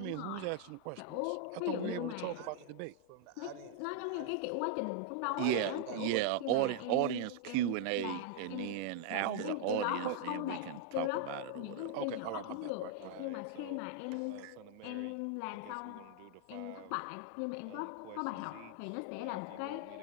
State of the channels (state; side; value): different; both; correlation 0.00